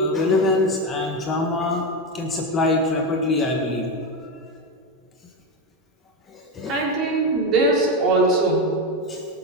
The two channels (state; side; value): normal; both; correlation 0.13